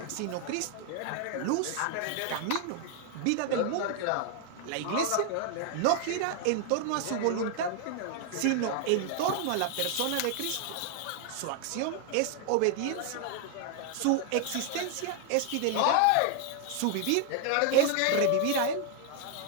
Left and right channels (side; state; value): both; different; correlation 0.00